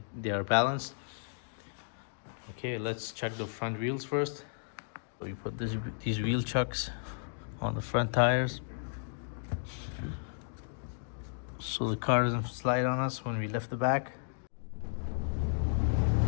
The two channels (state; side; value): silent; right; digital silence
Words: they are balanced. Okay, let's check the front wheels first. So we put these wheel chucks on the front tires so the car doesn't slide on us when we lift the back.